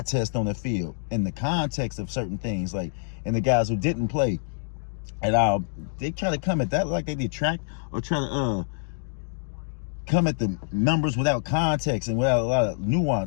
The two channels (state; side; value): silent; right; digital silence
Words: test on the field and the context of certain things. Like, and the guys who didn't play at all, they try to come at that like they detract or try to come at the numbers without context and without a lot of